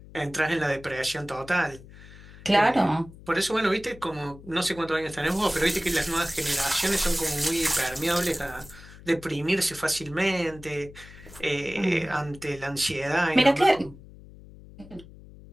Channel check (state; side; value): noise; left; hum, 19 dB below the sound